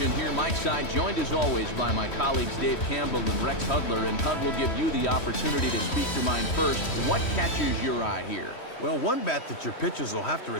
here, Mike Side, joined as always by my colleagues Dave Campbell and Rex Hudler. And Hud will give you the opportunity to speak your mind first. What catches your eye here? Well, one bat that your pitchers will have to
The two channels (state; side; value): late; right; 3.1 ms